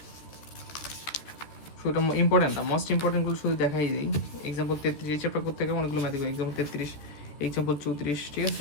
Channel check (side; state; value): right; late; 13 ms